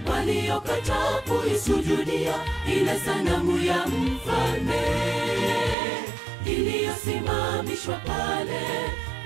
waliokataa kuisujudia ile sanamu ya mfalme iliyosimamishwa pale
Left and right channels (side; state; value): left; drops out; at 5.8 s